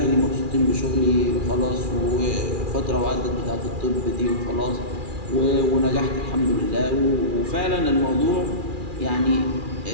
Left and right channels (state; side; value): late; left; 2.4 ms